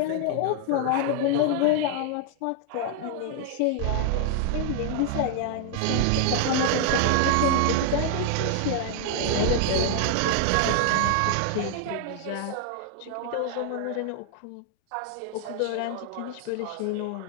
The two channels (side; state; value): both; different; correlation 0.00